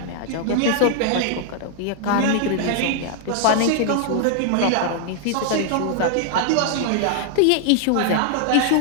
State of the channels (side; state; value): both; different; correlation 0.00